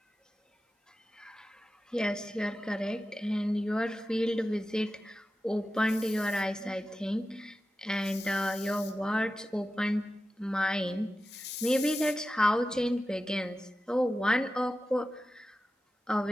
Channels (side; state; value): both; normal; correlation 0.93